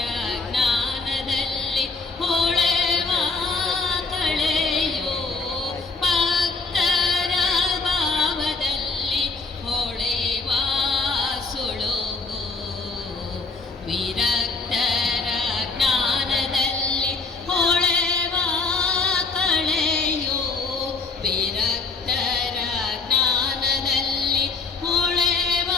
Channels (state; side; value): quieter; right; 4.0 dB